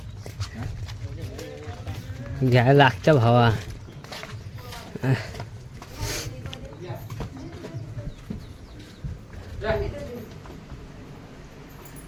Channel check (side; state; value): both; identical; correlation 1.00